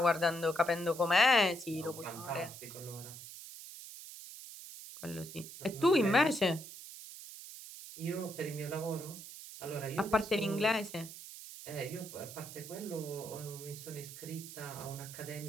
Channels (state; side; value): noise; right; hiss, 13 dB below the sound